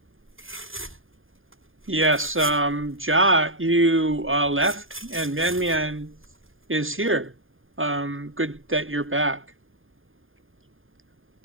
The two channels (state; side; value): late; left; 0.59 ms